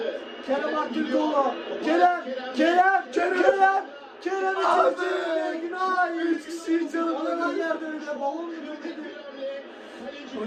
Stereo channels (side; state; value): both; identical; correlation 1.00